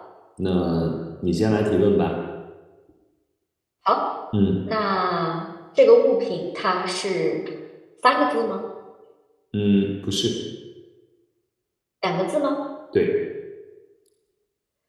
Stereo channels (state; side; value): identical; both; correlation 1.00